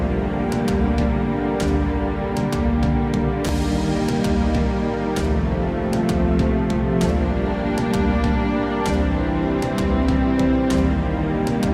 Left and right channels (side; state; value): both; identical; correlation 1.00